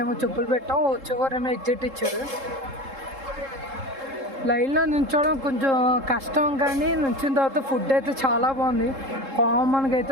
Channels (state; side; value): late; left; 3.7 ms